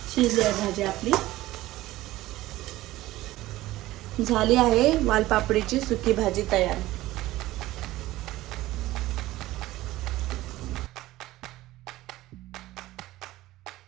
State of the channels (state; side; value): quieter; left; 16.8 dB